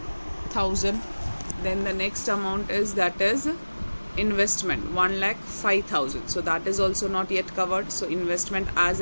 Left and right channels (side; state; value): both; inverted; correlation -1.00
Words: Then the next amount is, that is investment, 1,05,000. So that is also not yet covered. So investment as